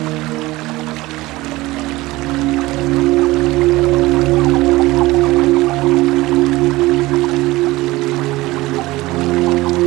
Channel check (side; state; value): left; quieter; 19.7 dB